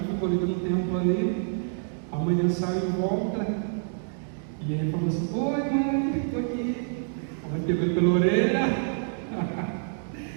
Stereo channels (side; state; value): left; silent; digital silence